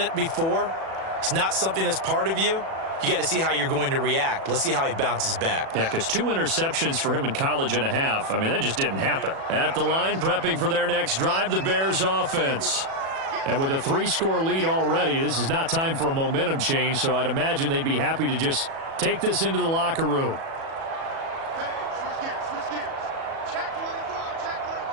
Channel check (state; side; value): late; left; 37 ms